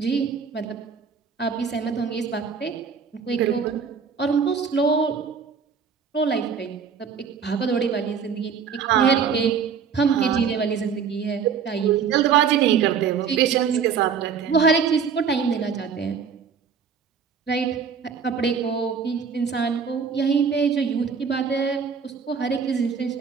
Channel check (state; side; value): quieter; left; 6.4 dB